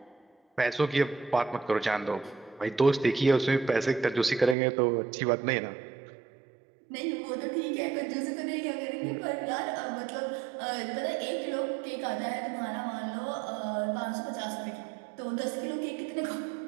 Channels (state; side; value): drops out; left; at 4.5 s